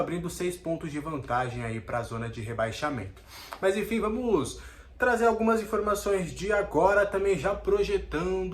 6 pontos de vantagem aí para a zona de rebaixamento. Mas enfim, vamos trazer algumas informações de agora, também já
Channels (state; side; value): identical; both; correlation 1.00